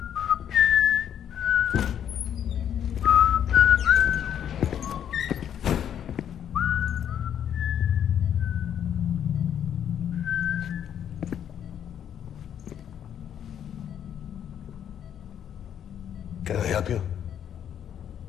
Can I help you?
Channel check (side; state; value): right; quieter; 9.4 dB